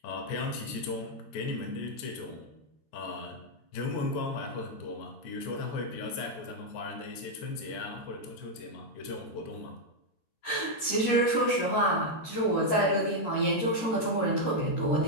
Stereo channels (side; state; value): right; late; 13 ms